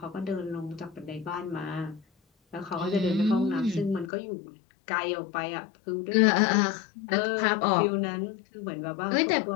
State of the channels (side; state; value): right; drops out; at 4.1 s